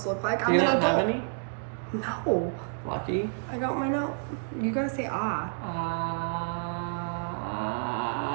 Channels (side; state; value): left; silent; digital silence